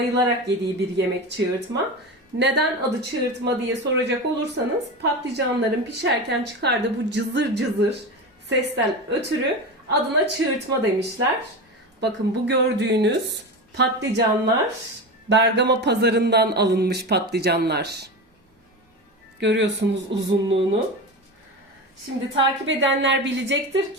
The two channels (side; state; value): both; normal; correlation 0.24